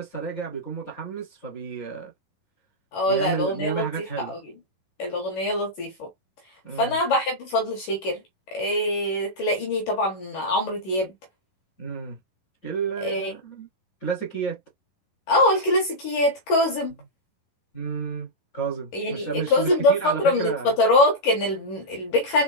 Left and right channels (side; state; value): right; late; 11 ms